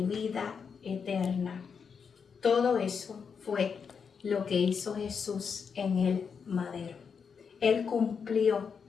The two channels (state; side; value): quieter; right; 6.2 dB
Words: vida eterna. Todo eso fue lo que hizo Jesús en el madero. Él cumplió